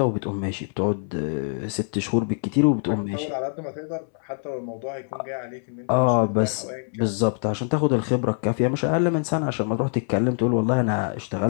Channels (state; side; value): silent; right; 62 dB below the other